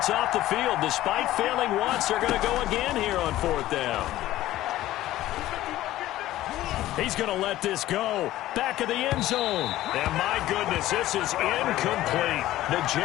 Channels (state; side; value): quieter; right; 15.0 dB